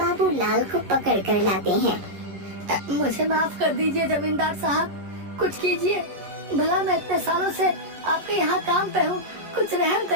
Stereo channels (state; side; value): late; left; 11 ms